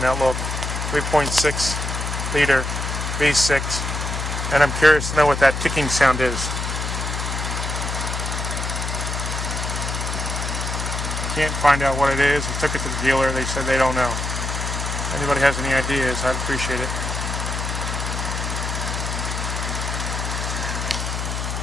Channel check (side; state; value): left; noise; hum, 3 dB below the sound